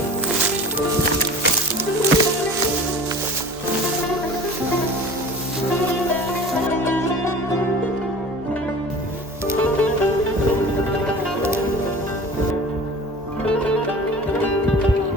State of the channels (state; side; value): normal; both; correlation 0.40